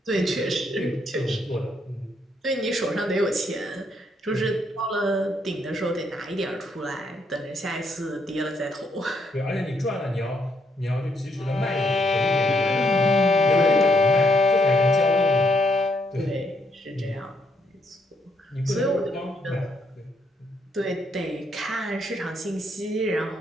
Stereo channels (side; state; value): both; normal; correlation 0.73